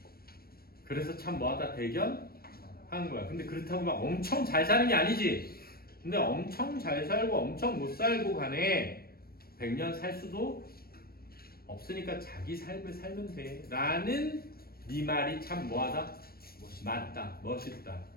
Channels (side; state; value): right; late; 0.44 ms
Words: 그래서 참 뭐하다 대견한 거야. 근데 그렇다고 막 엄청 잘 사는 게 아니지. 근데 엄청 잘 살고 엄청 못 살고 간에 100년 살 수도 없으니까 자기 삶을 살면 돼. 라는 네 말이 참 뭐하다? 맞다. 멋있다.